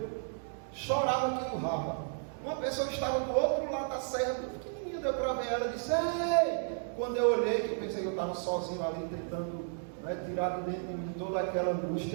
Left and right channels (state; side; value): silent; left; digital silence